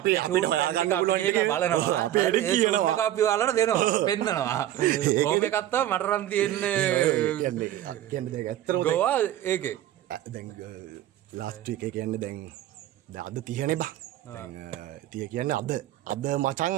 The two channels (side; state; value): left; quieter; 12.8 dB